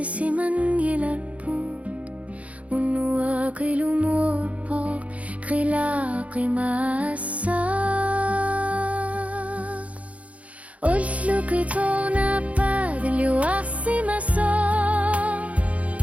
من يلالبوت ونواقل موربوك خلاقي ماسا قلتلو كتونا بعد اللي واسي مسا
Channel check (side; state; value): left; late; 0.066 ms